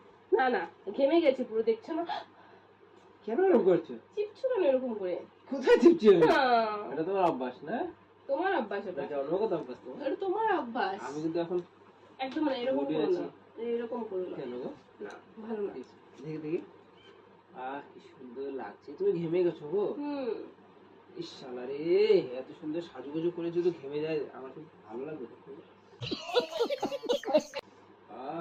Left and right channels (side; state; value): both; identical; correlation 1.00